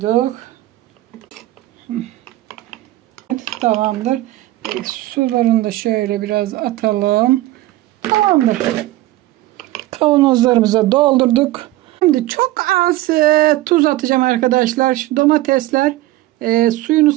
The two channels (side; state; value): left; quieter; 16.8 dB